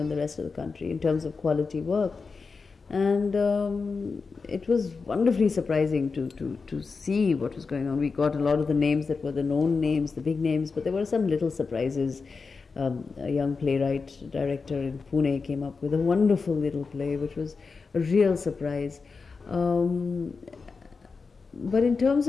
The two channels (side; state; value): right; quieter; 4.7 dB